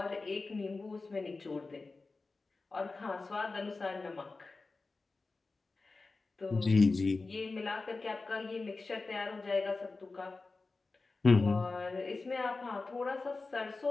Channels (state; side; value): quieter; right; 3.7 dB